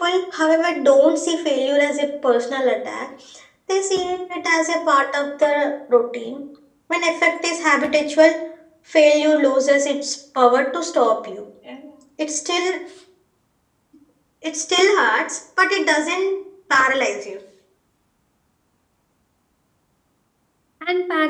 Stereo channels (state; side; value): identical; both; correlation 1.00